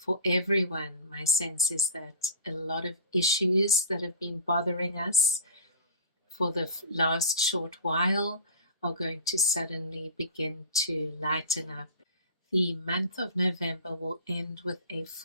everyone, my sense is that a lot of issues that have been bothering us for the last short while are going to suddenly begin to lighten up. The month of November will end with a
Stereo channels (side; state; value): both; inverted; correlation -0.35